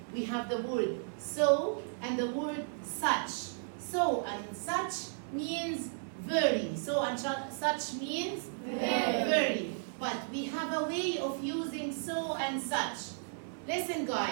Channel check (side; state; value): left; silent; digital silence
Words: We have the word so and the word such. So and such means very. So and such means very. But we have a way of using so and such. Listen